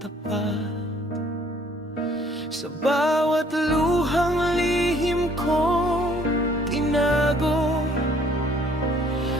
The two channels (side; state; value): both; normal; correlation 0.60